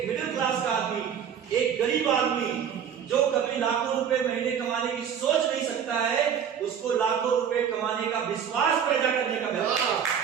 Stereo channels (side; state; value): left; quieter; 8.1 dB